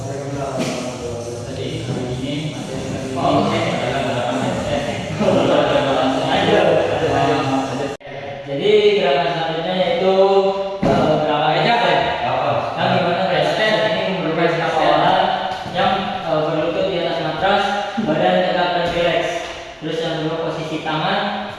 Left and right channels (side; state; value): both; identical; correlation 1.00